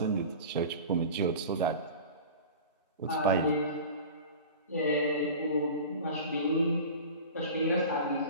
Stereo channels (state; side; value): inverted; both; correlation -0.36